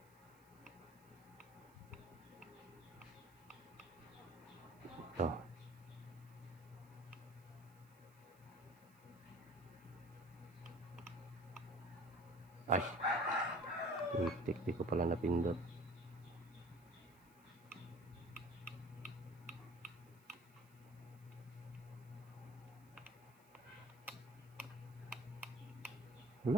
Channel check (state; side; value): noise; right; hiss, 27 dB below the sound